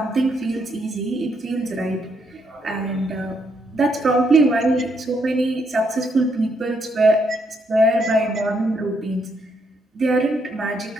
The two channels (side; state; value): both; normal; correlation 0.75